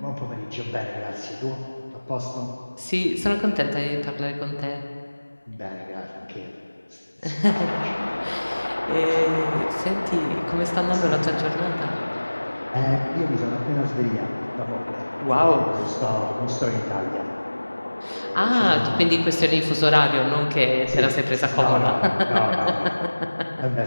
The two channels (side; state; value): both; inverted; correlation -1.00